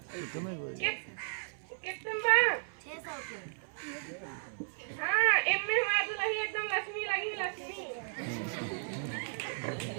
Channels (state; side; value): silent; left; 55 dB below the other